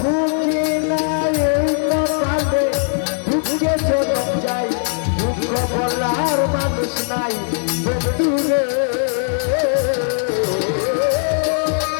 দুঃখ বলার মানুষ নাই বন্ধুরে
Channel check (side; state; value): right; silent; digital silence